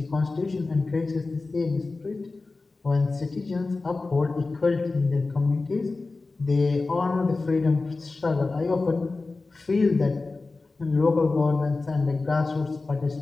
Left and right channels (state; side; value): quieter; right; 3.6 dB